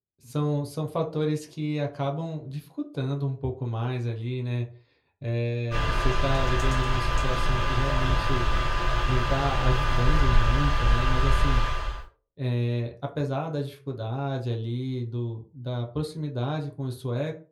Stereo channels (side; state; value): both; identical; correlation 1.00